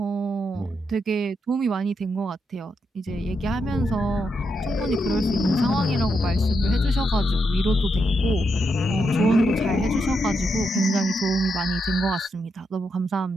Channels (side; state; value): both; normal; correlation 0.82